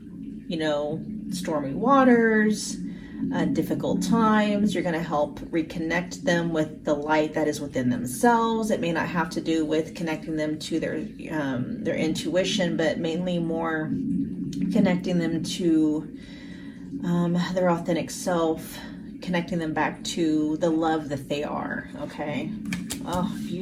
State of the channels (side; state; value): both; identical; correlation 1.00